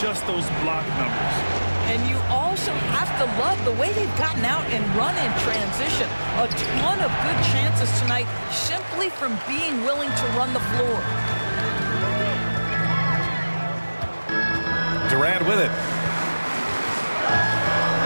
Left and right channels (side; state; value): both; inverted; correlation -1.00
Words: just those block numbers. And you also have to love the way they've gotten out and run in transition. A ton of good chances tonight simply from being willing to run the floor. Durant with it.